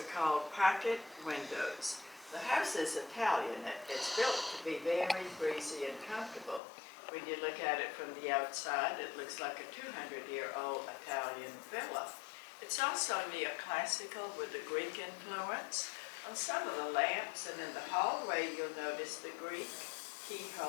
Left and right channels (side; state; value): right; drops out; at 6.6 s